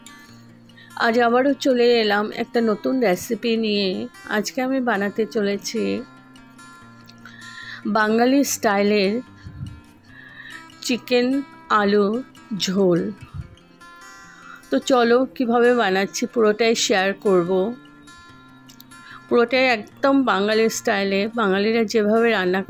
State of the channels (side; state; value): both; identical; correlation 1.00